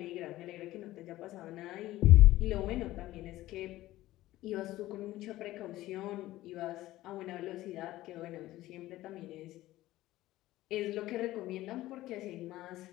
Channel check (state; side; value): quieter; right; 16.1 dB